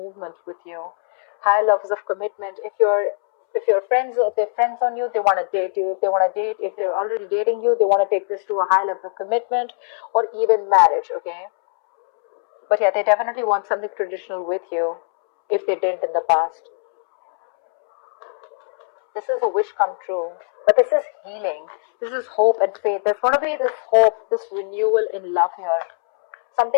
with you. High levels of commitment. If they're friends on you, they want to date you. If they're already dating you, they want to take this to a high level of commitment or even marriage, okay? But yeah, they definitely want something traditional with you if they didn't in the past. This is a wish come true. But this is healing. This is hope and faith. There's going to be this hope, this renewal in love here.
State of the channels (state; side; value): silent; right; 65 dB below the other